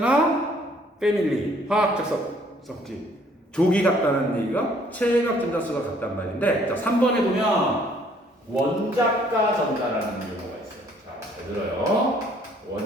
패밀리, 화학적 성질, 조기 같다는 얘기가 체각 전자수가 같단 말인데, 자, 3번에 보면 원자가 전자라는 용어가 있어요. 자, 잘 들어요.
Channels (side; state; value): both; normal; correlation 0.62